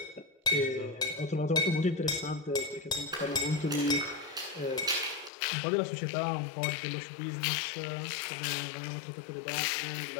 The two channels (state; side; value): drops out; right; at 5.3 s